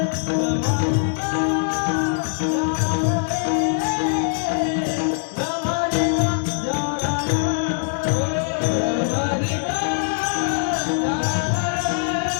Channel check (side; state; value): right; silent; digital silence